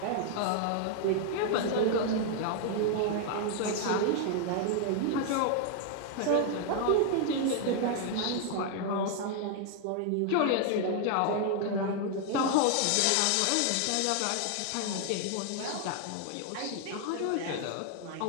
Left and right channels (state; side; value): different; both; correlation 0.00